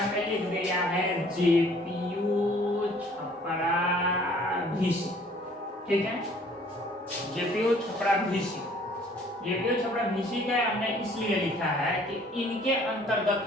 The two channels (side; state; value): both; normal; correlation 0.56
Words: लिख दिया है जेपीयू छपरा भीसी। ठीक है, JPU Chhapra VC. JPU Chhapra VC का हमने इसलिए लिखा है कि इनके